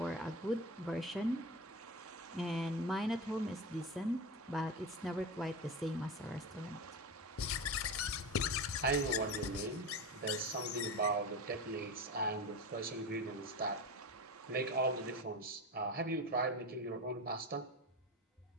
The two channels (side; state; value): both; normal; correlation 0.24